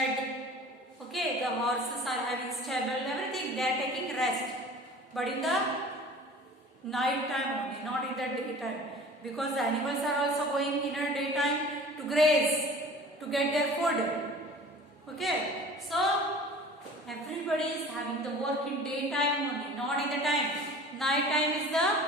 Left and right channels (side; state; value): both; normal; correlation 0.43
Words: okay, the horses are having stable, everything they are taking rest, but in the night time only, not in the daytime, because the animals are also going in a daytime to graze, to get their food. Okay, so everybody is having the work in daytime only, not in the time. Night time is the